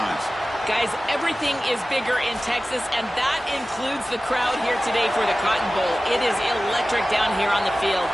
Guys, everything is bigger in Texas, and that includes the crowd here today for the Cotton Bowl. It is electric down here on the field.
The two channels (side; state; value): both; normal; correlation 0.96